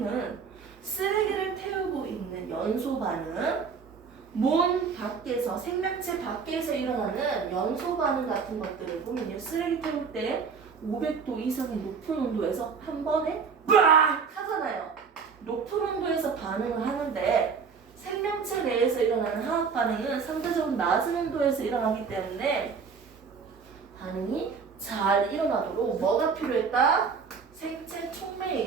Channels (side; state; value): left; quieter; 5.7 dB